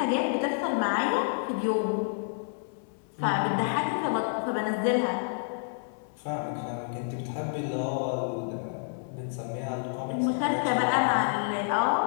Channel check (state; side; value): silent; right; 59 dB below the other